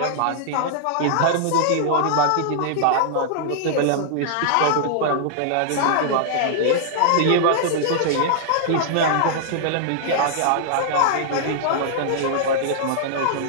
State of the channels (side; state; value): both; different; correlation -0.01